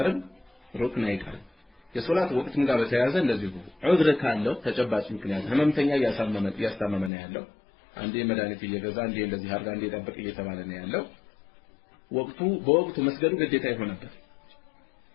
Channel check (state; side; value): drops out; right; at 7.1 s